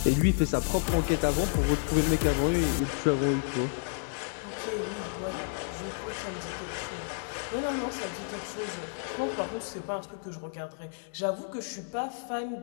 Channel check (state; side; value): silent; right; digital silence